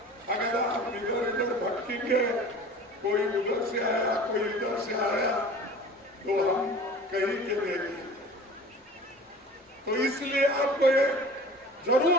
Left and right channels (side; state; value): both; normal; correlation 0.42